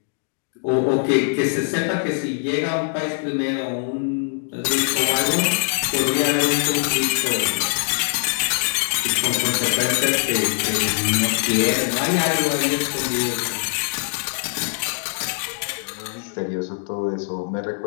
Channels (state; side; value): silent; right; 64 dB below the other